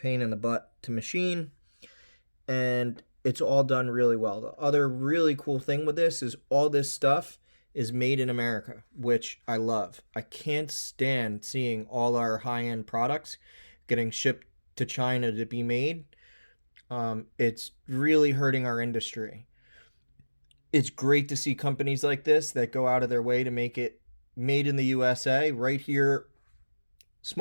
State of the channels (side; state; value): both; inverted; correlation -1.00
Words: in the butt to machine, and it's all done really well. The other really cool thing with this is all this stuff is made in America, which I love. I can't stand seeing all our high-end products getting shipped to China to be made. It's really hurting our industry. It's great to see companies like this that go out of their way to make it made in the USA right here.